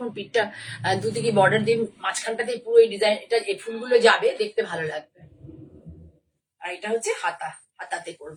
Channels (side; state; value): both; identical; correlation 1.00